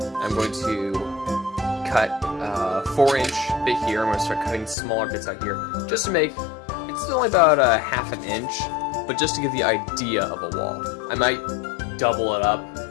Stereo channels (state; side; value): drops out; right; at 4.8 s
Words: I'm going to cut a 4-inch bit here. I'm going to start cutting smaller bits out here, just to make. It's only about a ½ an inch, but just to give the idea of a wall. I might double it up,